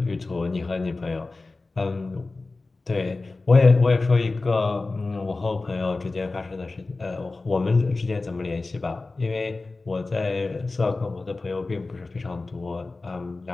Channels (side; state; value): right; quieter; 3.5 dB